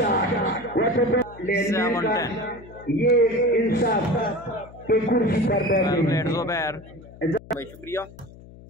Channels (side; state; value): left; noise; hum, 20 dB below the sound